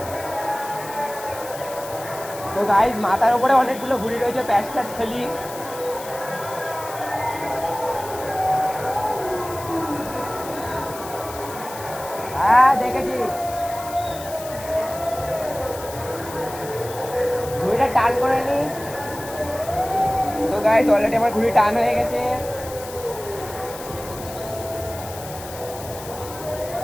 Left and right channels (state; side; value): noise; left; hiss, 14 dB below the sound